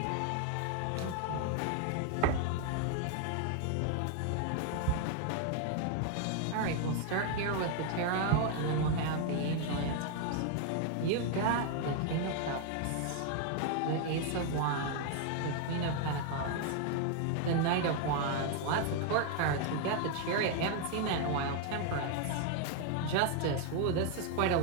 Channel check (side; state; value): both; different; correlation 0.00